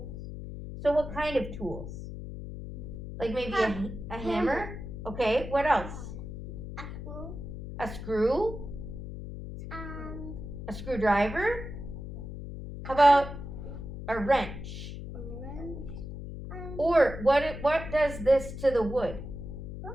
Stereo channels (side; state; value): left; noise; hum, 9 dB below the sound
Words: So what kind of tools? Like maybe a hammer? Okay, what else? A screw. A screw? And A screwdriver? How about a wrench? a wrench. And Or what does this to the wood? Huh?